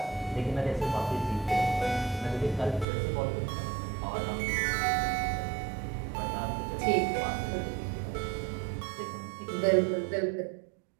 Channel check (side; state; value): left; drops out; at 2.9 s